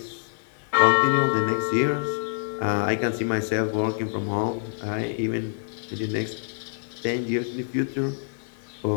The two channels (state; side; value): silent; right; digital silence